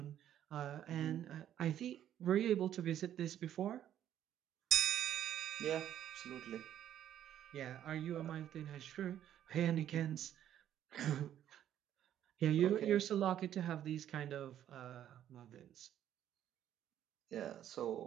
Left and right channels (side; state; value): left; quieter; 10.9 dB